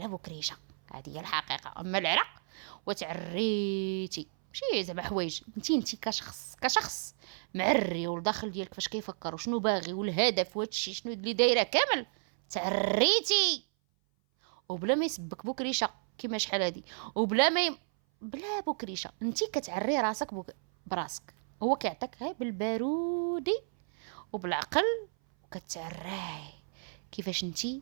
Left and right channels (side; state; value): left; silent; 56 dB below the other